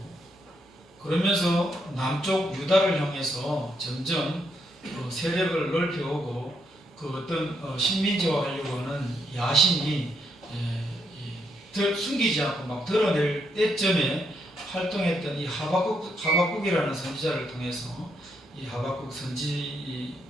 그러면서 남쪽 유다를 향해서 점점 세력을 넓혀오고 그 어떤 식민지화하려고 하는 야심이 숨기지 않고 막 드러낼 때쯤에 활동했던 이 하박국이라는 선지자를 통해서 이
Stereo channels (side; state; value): both; normal; correlation 0.77